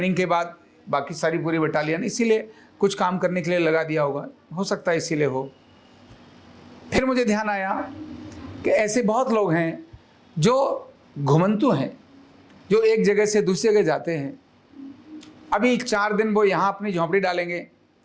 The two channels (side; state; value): both; identical; correlation 1.00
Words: के बाद बाकी सारी पूरी बटालियन इसीलिए कुछ काम करने के लिए लगा दिया होगा, हो सकता है इसीलिए हो। फिर मुझे ध्यान आया कि ऐसे बहुत लोग हैं जो घुमंतु हैं, जो एक जगह से दूसरी जगह जाते हैं। अभी 4 दिन वो यहाँ अपनी झोंपड़ी डालेंगे,